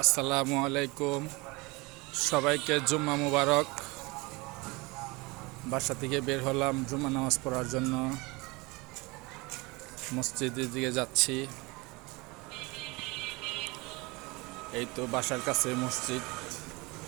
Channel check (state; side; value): quieter; left; 25.0 dB